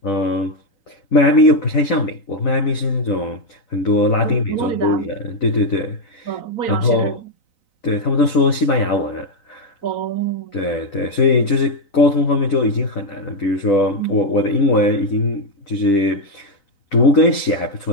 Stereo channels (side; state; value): right; late; 3.9 ms